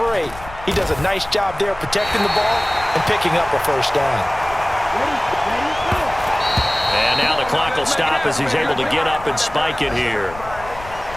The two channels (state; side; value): noise; left; rumble, 16 dB below the sound